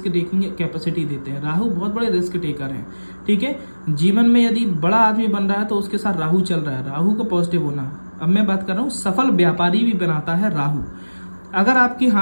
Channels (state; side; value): inverted; both; correlation -1.00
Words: टेकिंग कैपेसिटी देते हैं। राहु बहुत बड़े रिस्क टेकर हैं। ठीक है, जीवन में यदि बड़ा आदमी बन रहा है तो उसके साथ राहु चल रहा है, राहु का पॉजिटिव होना। अब मैं बात कर रहा हूँ सफल व्यापारी भी बनाता है राहु। अगर आपके